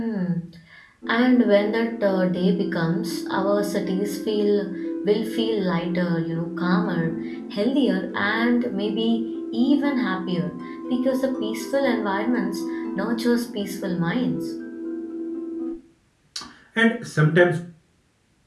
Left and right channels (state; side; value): identical; both; correlation 1.00